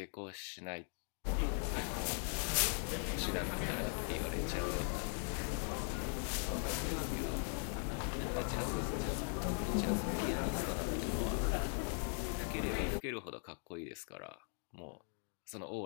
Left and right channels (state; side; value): silent; right; 51 dB below the other